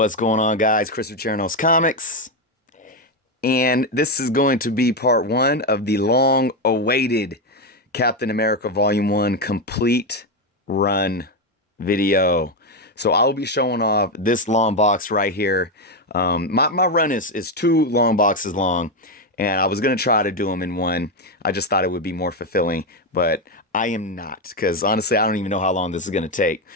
going on, guys? Christopher Chernos Comics. And this is going to be part one of the long awaited Captain America Volume 1 complete run video. So I will be showing off this long box right here. My run is two long boxes long, and I was going to try to do them in one. I just thought it would be more fulfilling, but I am not, because honestly, I don't even know how long this is going to take.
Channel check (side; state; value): both; normal; correlation 0.08